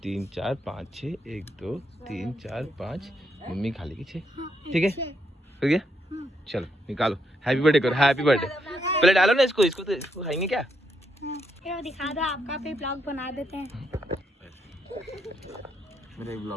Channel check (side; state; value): both; normal; correlation 0.79